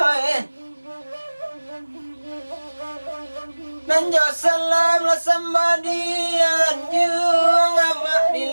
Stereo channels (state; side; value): inverted; both; correlation -1.00